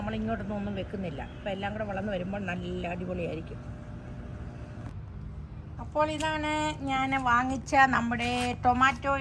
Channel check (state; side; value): identical; both; correlation 1.00